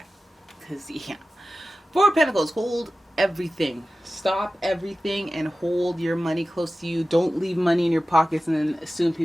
Four of Pentacles, hold everything. Stop everything and hold your money close to you. Don't leave money in your pockets and then assume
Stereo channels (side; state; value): both; normal; correlation 0.95